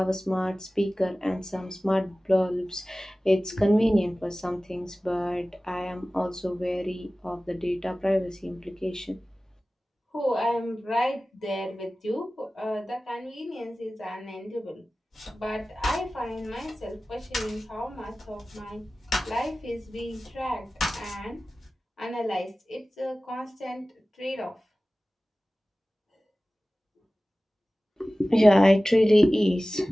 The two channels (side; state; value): both; normal; correlation 0.97